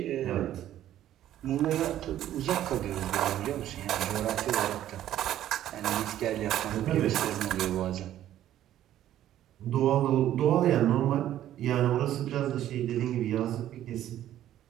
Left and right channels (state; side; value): quieter; left; 12.3 dB